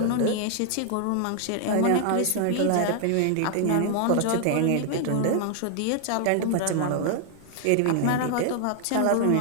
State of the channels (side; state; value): both; different; correlation 0.00